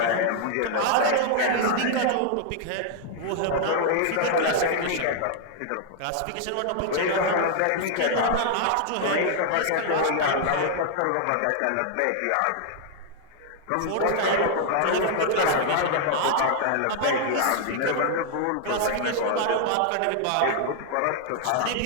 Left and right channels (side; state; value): both; different; correlation 0.00